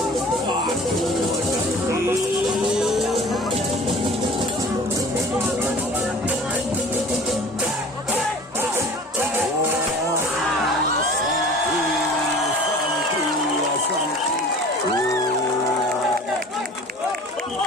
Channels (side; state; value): both; normal; correlation 0.44